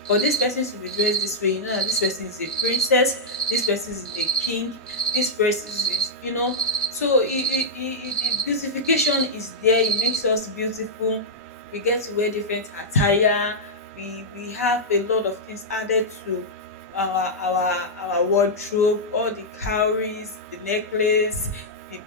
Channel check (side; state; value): both; normal; correlation -0.08